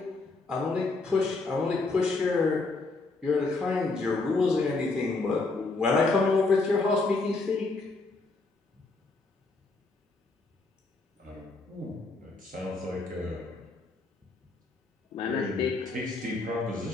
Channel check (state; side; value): quieter; right; 3.6 dB